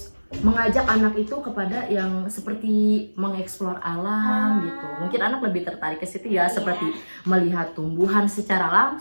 mengajak anak itu kepada yang seperti mengeksplor alam gitu. Mungkin anak lebih tertarik ke situ ya, Iya. seperti melihat tumbuhan secara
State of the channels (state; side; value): inverted; both; correlation -1.00